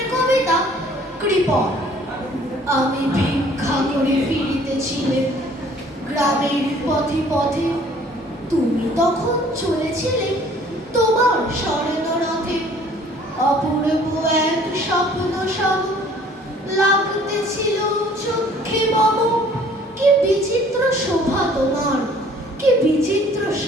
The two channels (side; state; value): both; normal; correlation 0.55